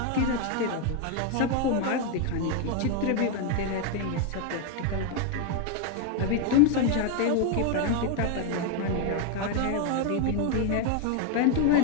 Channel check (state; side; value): different; both; correlation 0.01